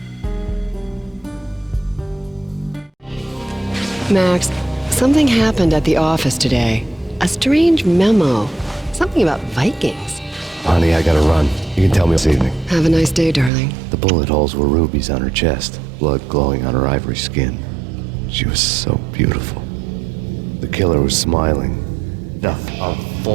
Max, something happened at the office today. A strange memo. Something about Vikings. Honey, I gotta run. You can tell me this evening. Have a nice day, darling. The bullet holes were rubies on her chest, blood glowing on her ivory skin. She was so beautiful. The killer was smiling. Death of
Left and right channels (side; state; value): left; drops out; at 13.5 s